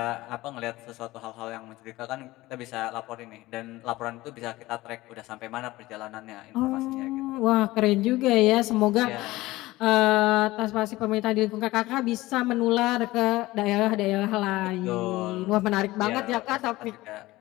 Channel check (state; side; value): quieter; right; 18.5 dB